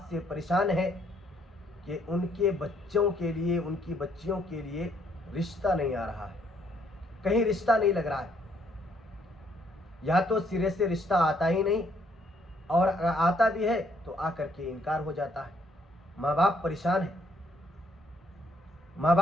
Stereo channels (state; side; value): normal; both; correlation 0.69